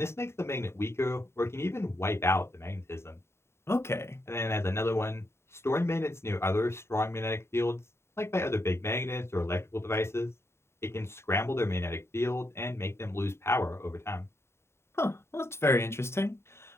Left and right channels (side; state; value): right; late; 0.12 ms